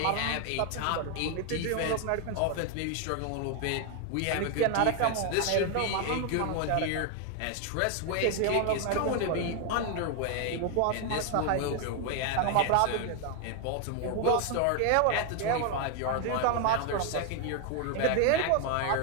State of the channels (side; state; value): both; different; correlation 0.01